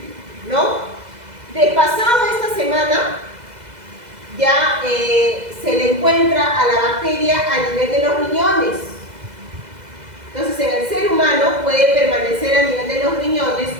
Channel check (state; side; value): late; left; 2.0 ms